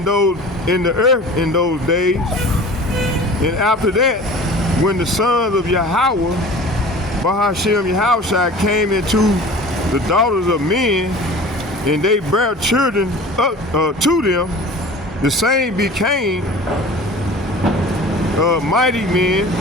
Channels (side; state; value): both; normal; correlation 0.41